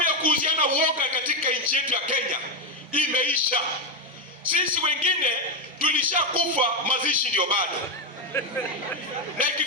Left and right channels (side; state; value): both; normal; correlation 0.07